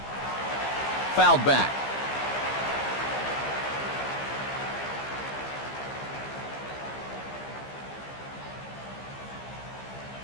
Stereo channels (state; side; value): late; right; 15 ms